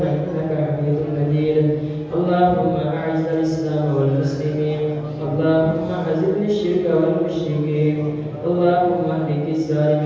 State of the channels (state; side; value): identical; both; correlation 1.00